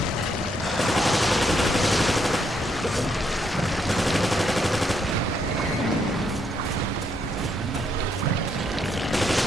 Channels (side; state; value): both; normal; correlation 0.75